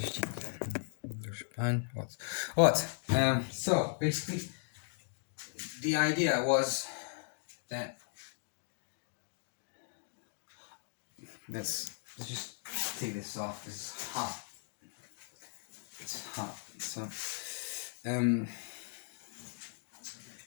Вот. So, basically, the idea was that... Let's just take this off. It's hot. It's hot. So,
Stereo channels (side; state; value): right; silent; digital silence